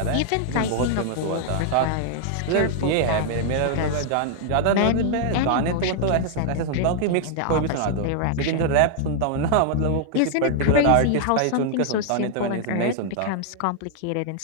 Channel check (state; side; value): different; both; correlation 0.00